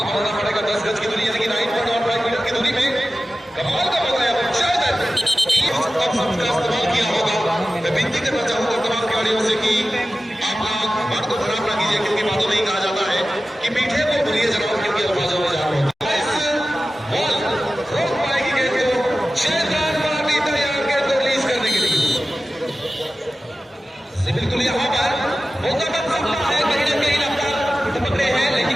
बनाना पड़ेगा 10 गज की दूरी यानी कि 9.15 मीटर की दूरी में। कमाल का बताया इस्तेमाल किया होगा। मैं विनती करना चाहूंगा तमाम खिलाड़ियों से कि आप लोग बात को खराब ना कीजिए क्योंकि बातों में ही कहा जाता है कि मीठे को भूलिए जरा क्योंकि अल्फाजों में जान होता है। बॉल रोक पाएगी गेंद को शेरखान पार्टी तैयार गेंद को रिलीज करने के लिए। बिल्कुल यहाँ पर मौका बन सकता है कहीं ना कहीं रफ्तार पकड़े हैं लेकिन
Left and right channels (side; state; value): both; normal; correlation 0.95